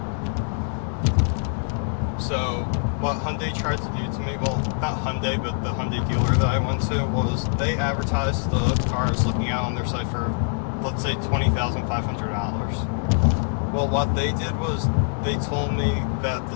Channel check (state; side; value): silent; right; digital silence